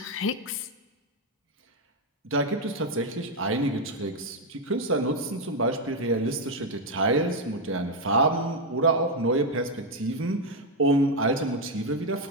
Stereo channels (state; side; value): normal; both; correlation 0.04